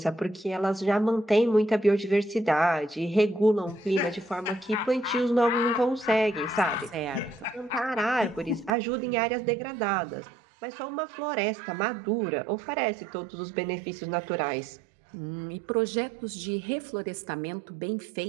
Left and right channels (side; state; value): left; drops out; at 8.7 s